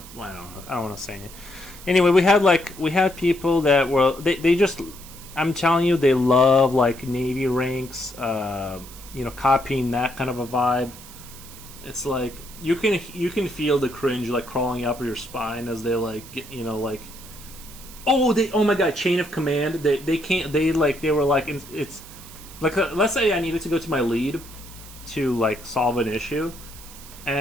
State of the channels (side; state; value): right; noise; hiss, 17 dB below the sound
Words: I don't want to say it. Anyway, we had people that were they just. I'm telling you, they love like Navy ranks. Copying that kind of a vibe. It's like you can feel the cringe like crawling up your spine as they like like. Oh my god, chain of command. They can't. They were like it's like let's say I needed to go to my lead to like solve an issue,